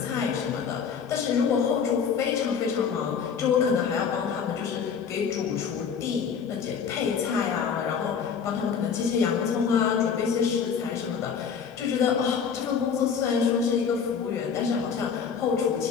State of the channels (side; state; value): right; quieter; 6.7 dB